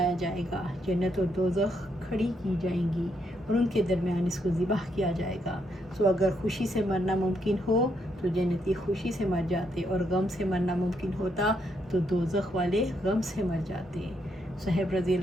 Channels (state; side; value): normal; both; correlation 0.77